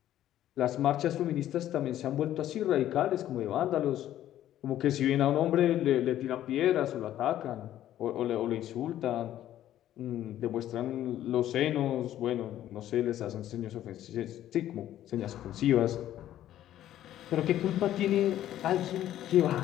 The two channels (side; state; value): right; quieter; 12.4 dB